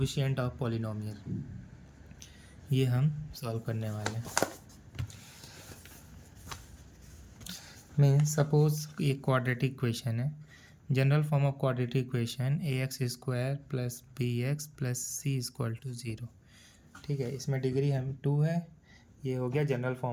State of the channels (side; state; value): both; identical; correlation 1.00